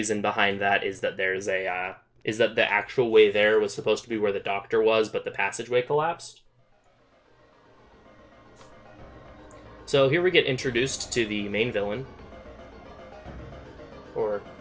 behind that is that there's a, is that the actual way there was supposed to be where the doctor was, but the passageway collapsed. So here we get introduced to the main villain. Or,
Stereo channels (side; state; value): both; identical; correlation 1.00